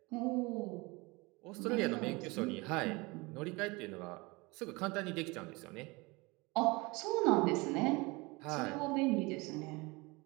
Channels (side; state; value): left; quieter; 25.0 dB